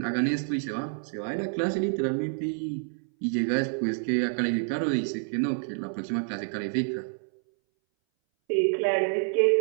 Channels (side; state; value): left; silent; 59 dB below the other